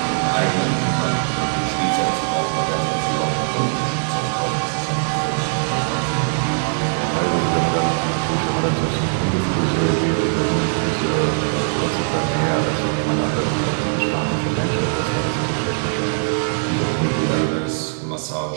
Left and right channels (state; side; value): silent; left; digital silence